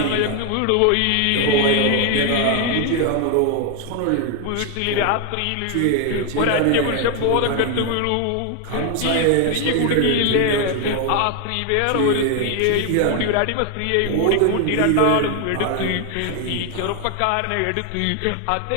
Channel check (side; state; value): both; different; correlation 0.01